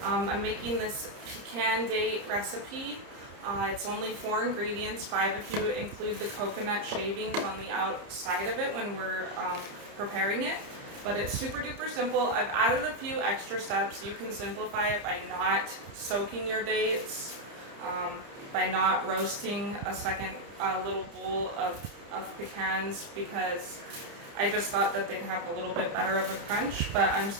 I'm making this pecan date recipe. It's only 4 ingredients, 5 if you include the coconut shavings on the outside of it when we're preparing it. But it's super duper simple. I've added a few extra steps. You can simplify it by not soaking your dates, by not roasting a second little bowl of pecans, because I just thought that they'd have a little bit better of a crunch, but I'm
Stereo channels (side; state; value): left; late; 30 ms